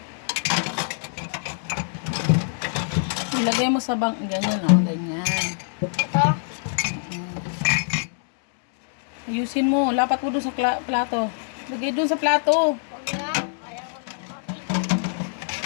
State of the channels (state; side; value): silent; right; digital silence